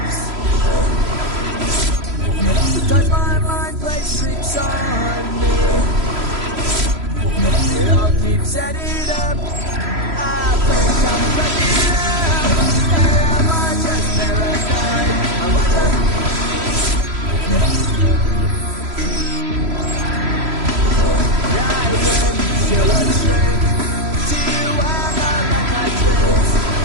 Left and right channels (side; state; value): left; late; 3.0 ms